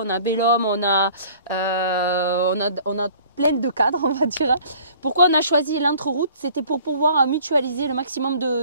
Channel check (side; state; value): both; inverted; correlation -0.51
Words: a Bellum, on a plein de cadres, on va dire. Pourquoi on a choisi l'entre-route? C'était pour pouvoir mutualiser le maximum